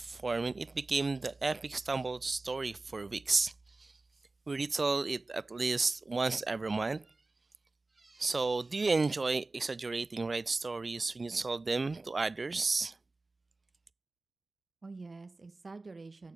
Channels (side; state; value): left; quieter; 3.3 dB